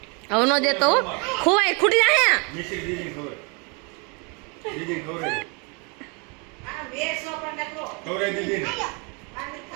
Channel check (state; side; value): quieter; left; 32.4 dB